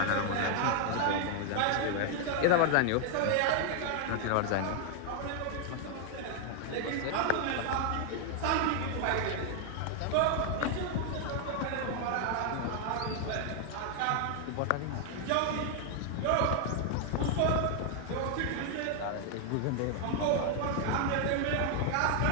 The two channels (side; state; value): both; different; correlation 0.00